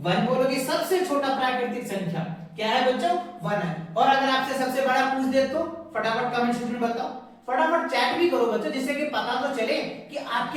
1 बोलोगे। सबसे छोटा प्राकृतिक संख्या क्या है बच्चों, 1 है। और अगर आपसे सबसे बड़ा पूछ दे तो फटाफट कमेंट सेक्शन में बताओ, फटाफट चैट भी करो बच्चों, जिससे कि पता तो चले कि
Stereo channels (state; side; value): identical; both; correlation 1.00